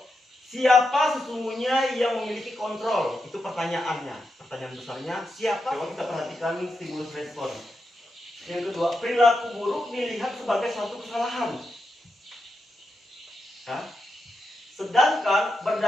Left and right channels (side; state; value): both; normal; correlation 0.86